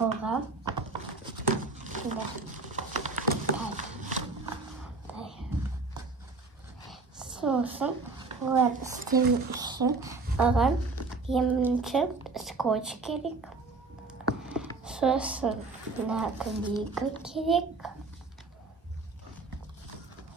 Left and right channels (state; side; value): quieter; left; 3.9 dB